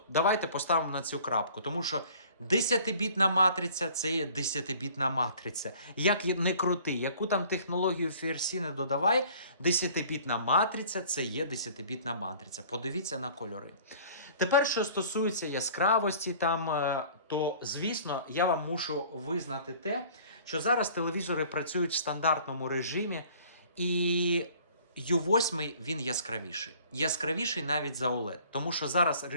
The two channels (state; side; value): inverted; both; correlation -0.51